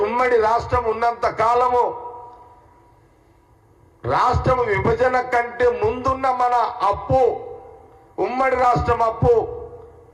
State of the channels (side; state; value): both; identical; correlation 1.00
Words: ఉమ్మడి రాష్ట్రం ఉన్నంత కాలము రాష్ట్రం విభజన కంటే ముందున్న మన అప్పు ఉమ్మడి రాష్ట్రం అప్పు